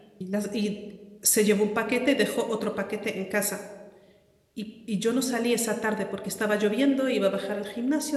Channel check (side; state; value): both; identical; correlation 1.00